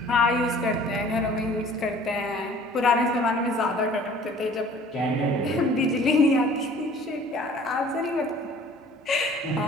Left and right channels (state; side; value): normal; both; correlation 0.50